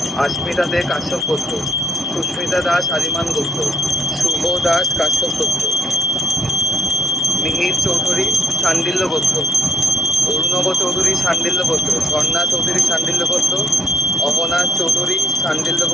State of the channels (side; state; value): both; normal; correlation 0.70